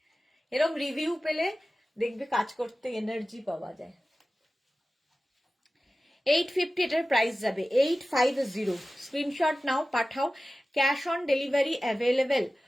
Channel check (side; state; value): both; normal; correlation 0.96